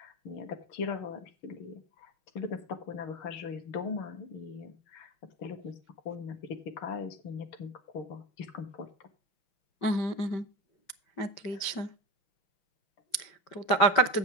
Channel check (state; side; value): late; right; 5.2 ms